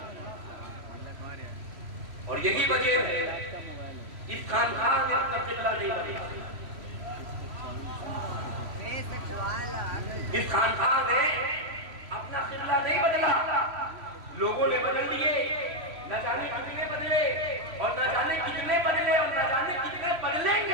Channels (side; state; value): left; late; 3.1 ms